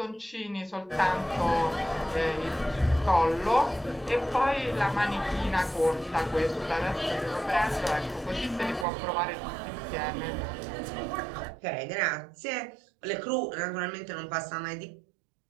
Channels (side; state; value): left; drops out; at 8.8 s